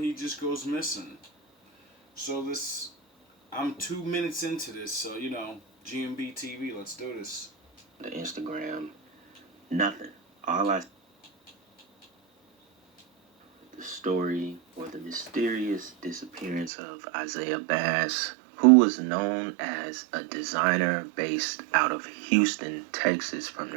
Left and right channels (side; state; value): left; drops out; at 16.7 s